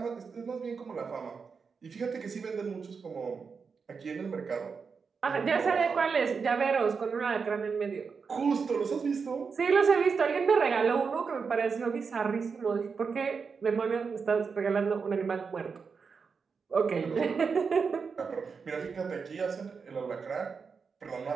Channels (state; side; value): quieter; left; 5.4 dB